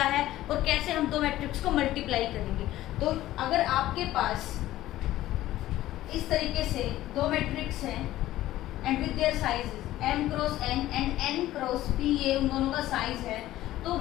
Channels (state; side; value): quieter; right; 14.9 dB